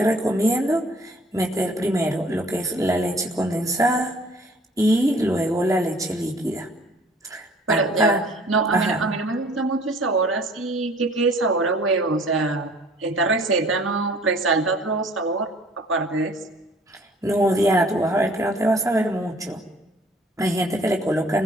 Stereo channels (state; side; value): normal; both; correlation 0.54